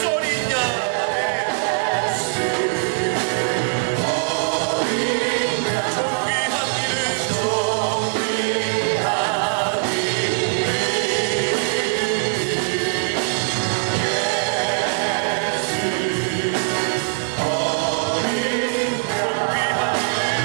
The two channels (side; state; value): left; silent; digital silence